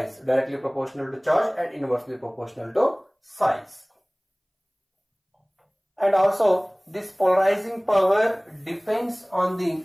directly proportional to charge and inversely proportional to size. And also this polarizing power depends on the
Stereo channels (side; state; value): both; identical; correlation 1.00